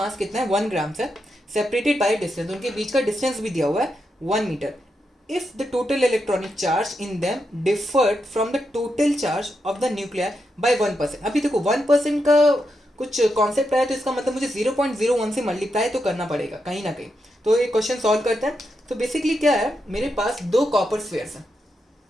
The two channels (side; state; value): both; normal; correlation 0.85